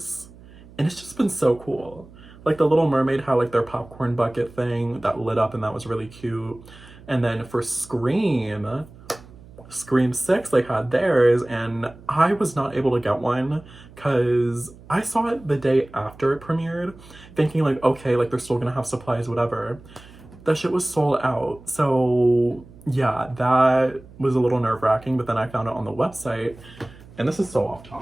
and it's just been so cool. Like, the Little Mermaid had like their popcorn bucket thing that lit up, and that was really cute. And then for Scream 6, they had theirs, and I was not able to get one because I saw it the day after it premiered, thinking like, okay, like they're still gonna have supplies, whatever. That shit was sold out. So yeah, that was a little nerve-wracking, but then I found it on the website, and this is so off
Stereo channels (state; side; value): noise; right; hum, 21 dB below the sound